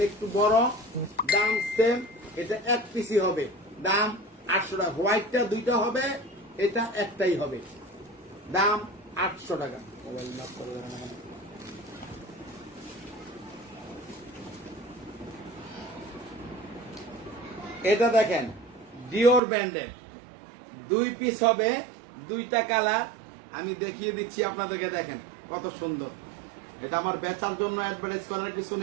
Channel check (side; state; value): left; drops out; at 19.4 s